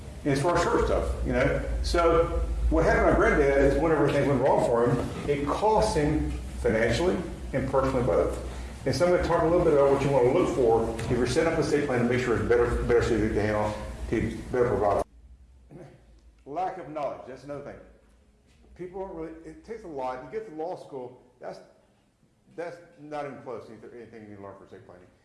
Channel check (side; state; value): both; identical; correlation 1.00